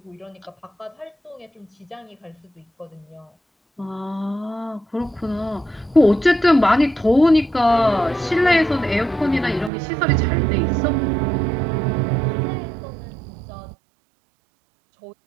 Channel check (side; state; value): left; drops out; at 9.7 s